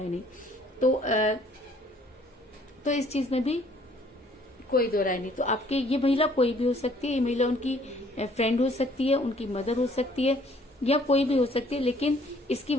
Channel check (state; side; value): normal; both; correlation 0.60